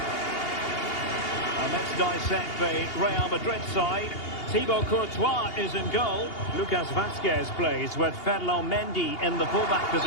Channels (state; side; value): late; right; 2.8 ms